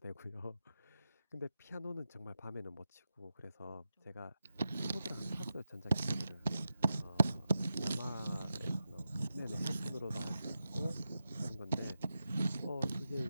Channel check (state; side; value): inverted; both; correlation -0.90